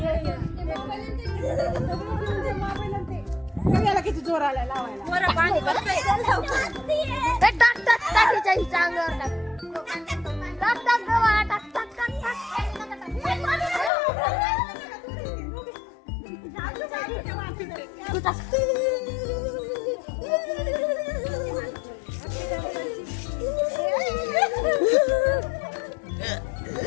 किती जोर आला लावायला.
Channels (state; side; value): drops out; right; at 13.9 s